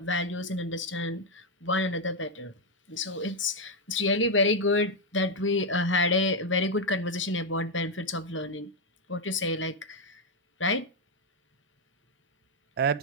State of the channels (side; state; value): both; normal; correlation 0.02